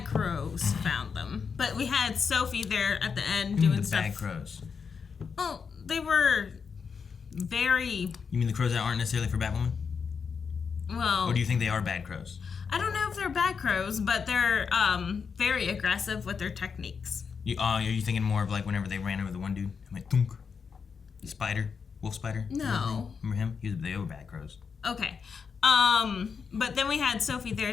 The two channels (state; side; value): quieter; right; 5.9 dB